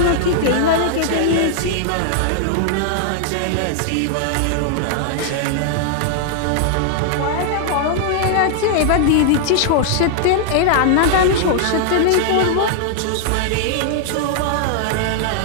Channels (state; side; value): different; both; correlation -0.01